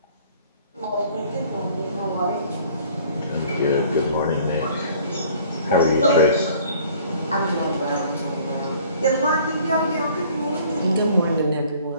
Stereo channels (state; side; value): inverted; both; correlation -0.53